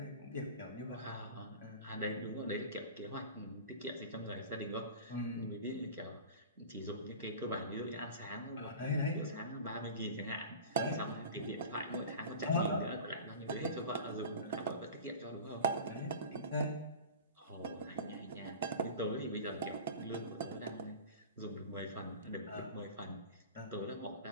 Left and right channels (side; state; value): both; inverted; correlation -0.35